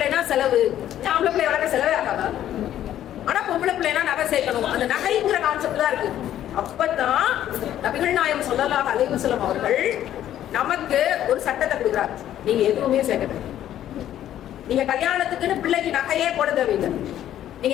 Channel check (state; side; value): quieter; right; 11.7 dB